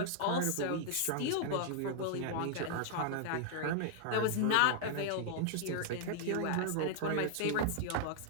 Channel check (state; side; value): different; both; correlation 0.00